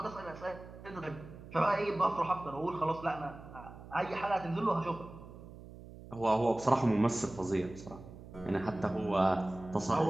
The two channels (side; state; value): right; noise; hum, 16 dB below the sound